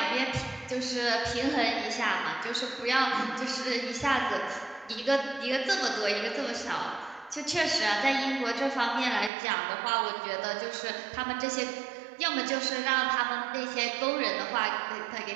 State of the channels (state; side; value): drops out; left; at 9.3 s